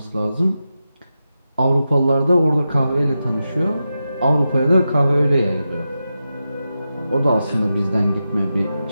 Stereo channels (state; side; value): inverted; both; correlation -0.90